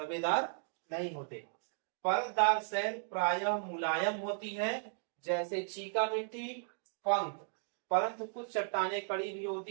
नहीं होते। परतदार शैल प्रायः मुलायम होती है जैसे चीका मिट्टी, पंख, परंतु कुछ चट्टानें कड़ी भी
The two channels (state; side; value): silent; left; digital silence